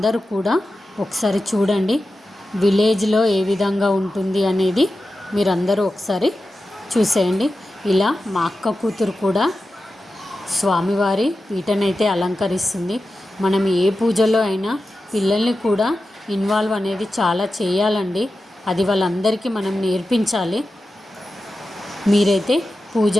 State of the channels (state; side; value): normal; both; correlation 0.92